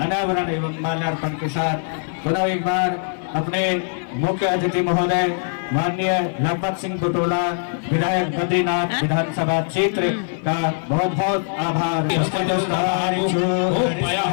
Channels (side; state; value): right; silent; 58 dB below the other